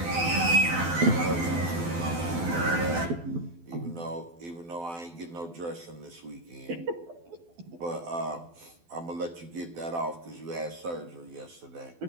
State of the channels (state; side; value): late; left; 12 ms